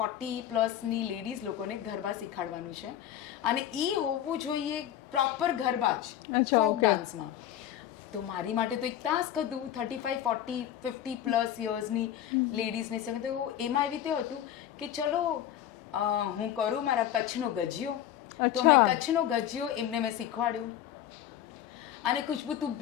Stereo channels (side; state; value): right; quieter; 11.2 dB